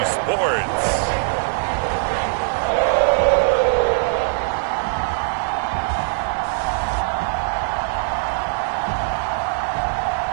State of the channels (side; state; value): left; silent; digital silence